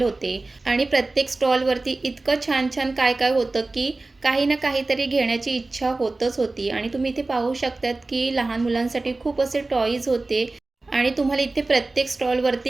होते। आणि प्रत्येक स्टॉलवरती इतकं छान छान काय काय होतं की काही ना काहीतरी घेण्याची इच्छा होतच होती। आणि तुम्ही इथे पाहू शकतात की लहान मुलांसाठी खूप असे टॉईज होते। आणि तुम्हाला इथे प्रत्येक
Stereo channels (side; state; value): left; quieter; 3.2 dB